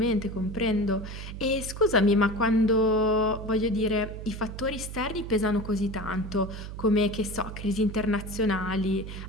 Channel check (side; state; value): right; noise; hum, 9 dB below the sound